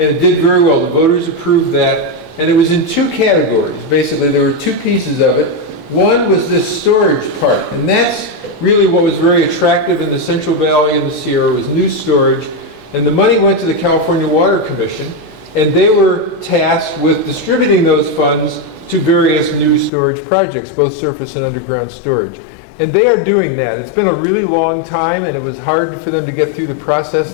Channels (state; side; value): drops out; right; at 19.9 s